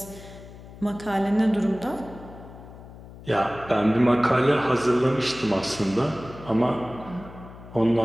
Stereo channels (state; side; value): noise; left; hum, 17 dB below the sound